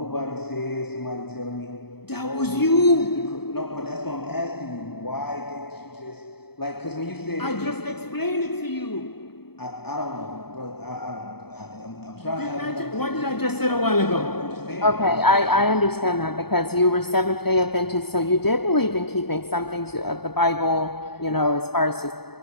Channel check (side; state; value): right; late; 0.97 ms